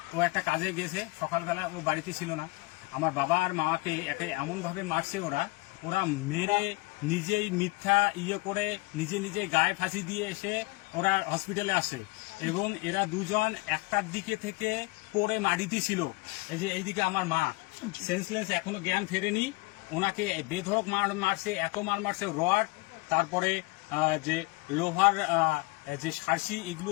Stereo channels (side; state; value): right; quieter; 24.7 dB